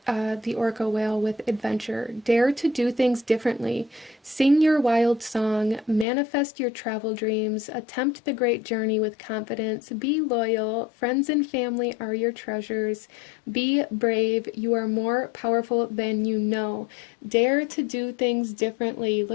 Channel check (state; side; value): drops out; right; at 6.1 s